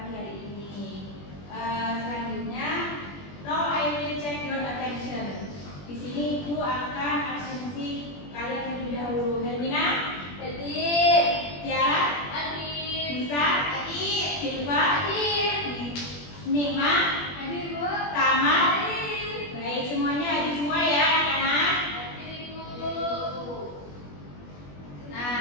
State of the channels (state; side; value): late; right; 21 ms